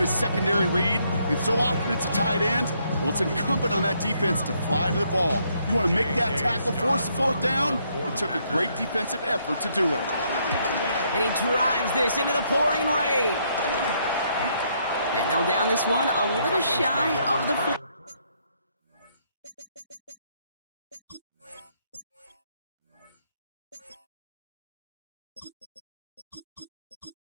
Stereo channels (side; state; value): both; inverted; correlation -0.72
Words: secondary read, and so often it's a tight end, well, it's incumbent on that defense to fly to the ball. You want to make that tackle, force the fourth down? It took a great defensive effort to do it. And he drives this into the pouring rain. And they'll down this one a little shy of the 4.